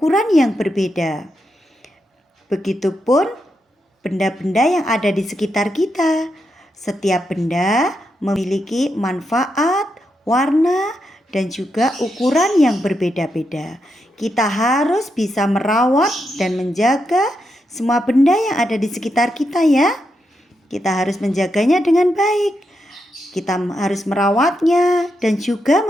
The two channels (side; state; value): both; normal; correlation 0.84